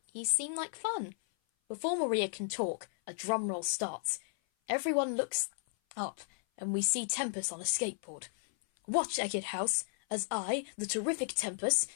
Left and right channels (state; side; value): silent; right; 55 dB below the other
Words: You seem like fun. Before Maria can talk, a drum roll starts. Everyone looks up, and we see Tempest on a skateboard. Watch, Eckett House, as I, the terrific Tempest,